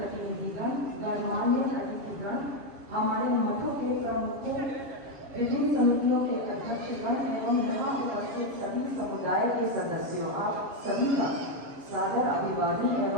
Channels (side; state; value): left; late; 7.0 ms